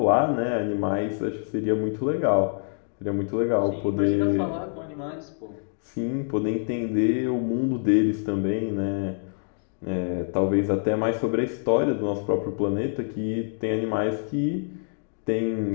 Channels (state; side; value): silent; right; digital silence